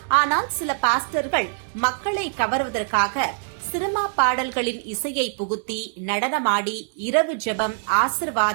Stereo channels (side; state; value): left; silent; digital silence